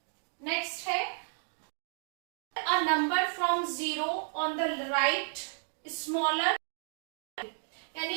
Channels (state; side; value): silent; left; digital silence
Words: नेक्स्ट है a number from 0 on the right smaller,